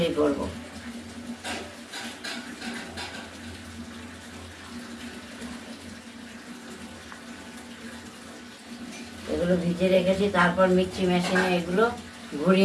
করব। এগুলো ভিজিয়ে রেখেছি, তারপর মিক্সি মেশিনে এগুলো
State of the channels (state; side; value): identical; both; correlation 1.00